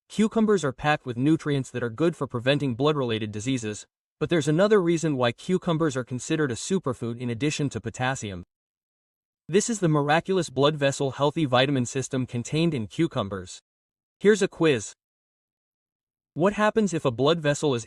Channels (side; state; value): both; identical; correlation 1.00